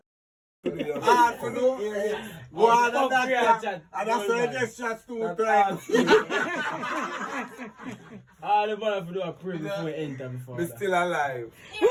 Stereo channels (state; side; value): identical; both; correlation 1.00